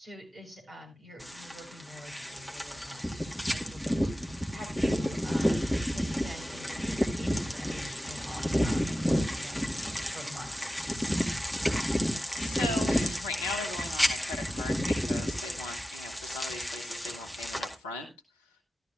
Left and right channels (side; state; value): both; normal; correlation 0.94